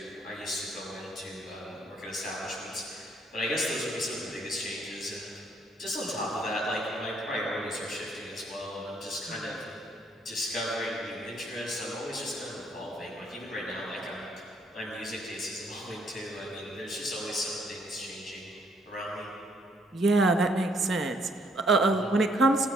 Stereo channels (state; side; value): normal; both; correlation 0.67